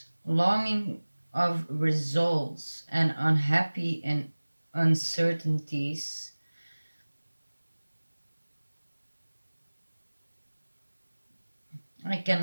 longing of results and unhappy in uncertainties. I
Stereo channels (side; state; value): both; inverted; correlation -1.00